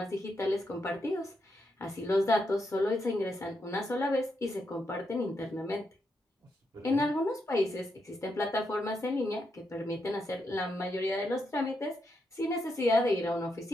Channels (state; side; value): normal; both; correlation 0.81